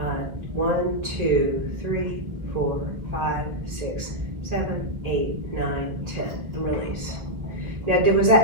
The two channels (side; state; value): left; late; 1.6 ms